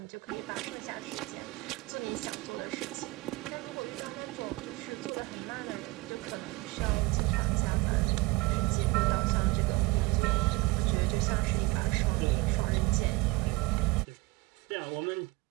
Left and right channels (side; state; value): left; quieter; 21.8 dB